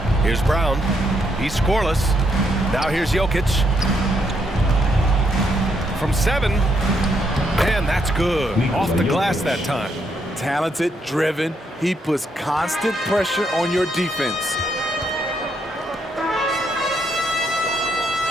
Here's Brown. He's scoreless. Now here's Jokic. From 7. Man, that's good. Off the glass that time. Talented, driven. He puts constant pressure on your defense.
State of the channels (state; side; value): normal; both; correlation 0.75